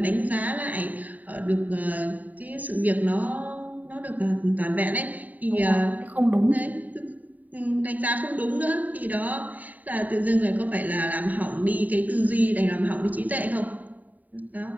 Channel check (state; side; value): late; left; 0.078 ms